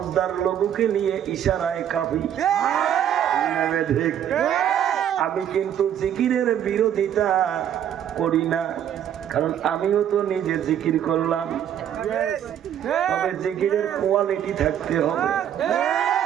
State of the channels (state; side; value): quieter; left; 10.0 dB